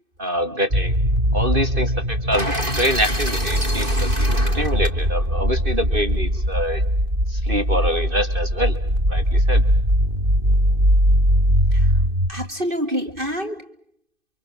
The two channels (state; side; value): late; left; 2.5 ms